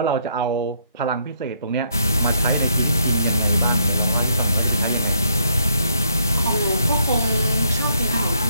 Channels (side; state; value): both; inverted; correlation -0.72